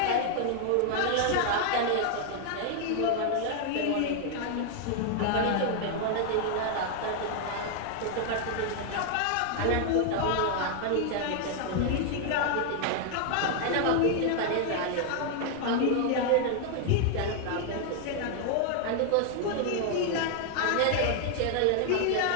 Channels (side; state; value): both; different; correlation 0.00